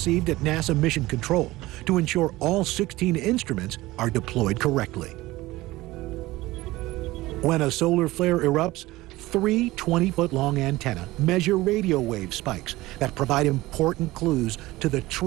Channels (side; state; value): left; quieter; 18.7 dB